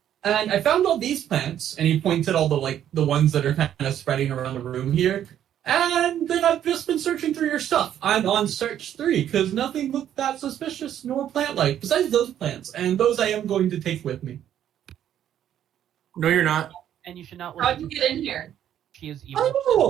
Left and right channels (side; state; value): left; quieter; 10.6 dB